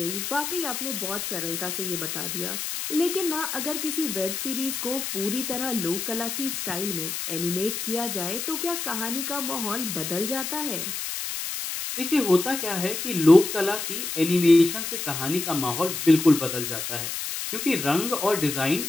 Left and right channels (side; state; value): left; noise; hiss, 4 dB below the sound